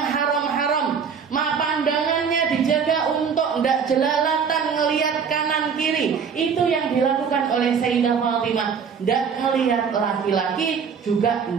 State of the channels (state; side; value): quieter; left; 6.5 dB